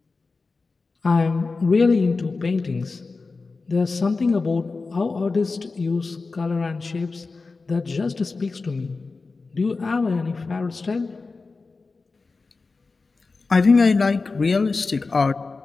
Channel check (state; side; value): quieter; right; 4.0 dB